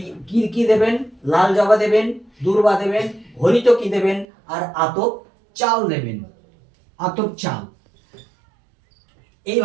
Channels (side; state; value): left; drops out; at 4.2 s